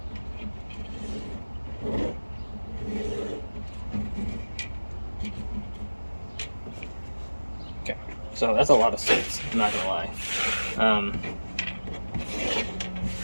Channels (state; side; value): inverted; both; correlation -1.00